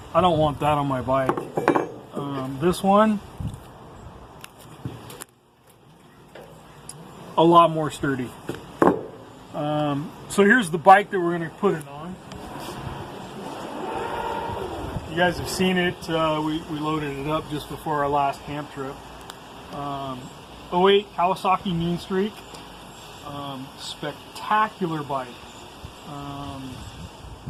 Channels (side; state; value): both; identical; correlation 1.00